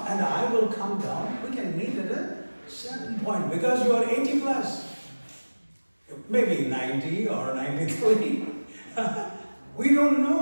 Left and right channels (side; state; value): both; inverted; correlation -1.00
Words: and I will come down. We can meet at a certain point because you are 80 plus. Maybe 90 or 93. We don't know,